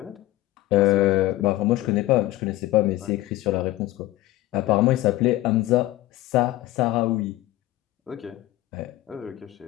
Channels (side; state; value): right; quieter; 16.4 dB